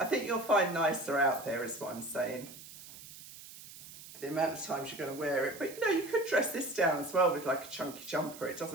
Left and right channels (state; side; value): noise; right; hiss, 16 dB below the sound